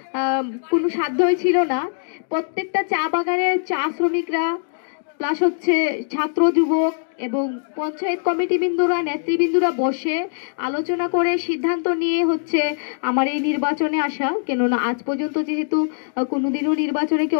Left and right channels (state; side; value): silent; right; digital silence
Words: কোনো সাধ্যই ছিল না। প্রত্যেকটা চা বাগানের চা শ্রমিকরা প্লাস ছাত্র যুবক এবং পঞ্চায়েত কমিটি বিন্দুরা নেতৃবৃন্দুরা বসে আলোচনা করে সিদ্ধান্ত নিয়ে আমার এই নির্বাচনে আসা। কেননা আজ পর্যন্ত যেহেতু কোনোদিনও নির্বাচনে কেউ